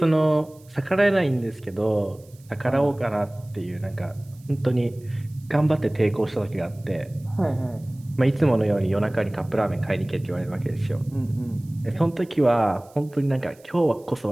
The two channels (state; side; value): noise; right; hiss, 29 dB below the sound